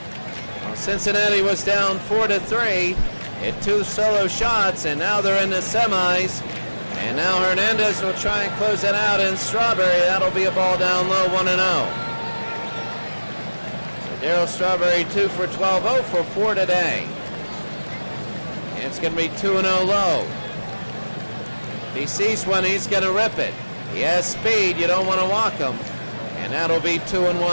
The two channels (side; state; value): both; inverted; correlation -1.00